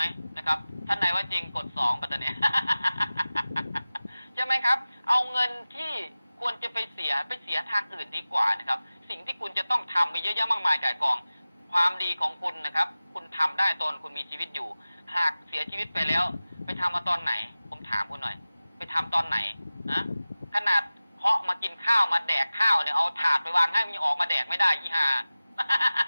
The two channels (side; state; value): both; inverted; correlation -0.97